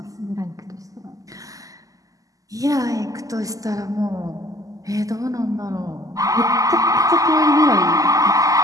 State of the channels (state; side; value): late; left; 0.17 ms